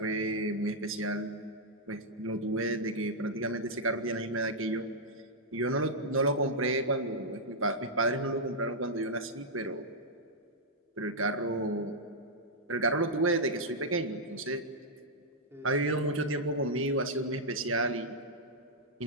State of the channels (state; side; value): normal; both; correlation -0.06